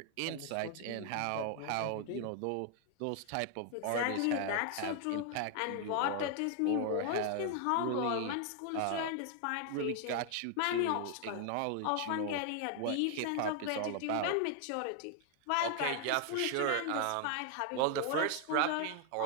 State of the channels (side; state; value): both; different; correlation 0.00